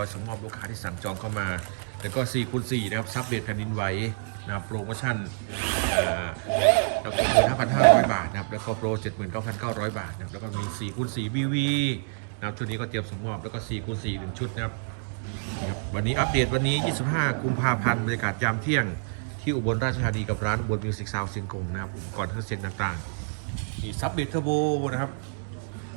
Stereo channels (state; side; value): silent; left; digital silence